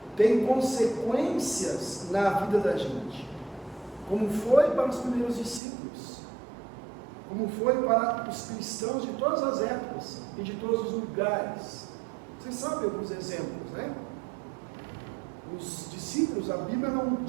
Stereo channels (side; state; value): left; drops out; at 5.6 s